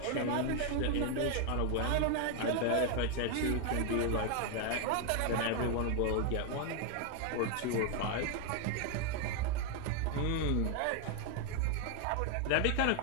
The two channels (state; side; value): different; both; correlation 0.01